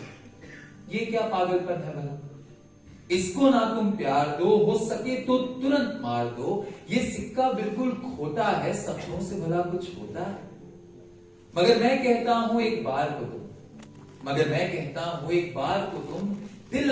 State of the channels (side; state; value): both; identical; correlation 1.00